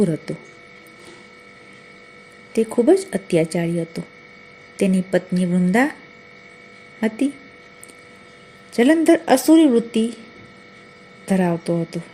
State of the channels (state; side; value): identical; both; correlation 1.00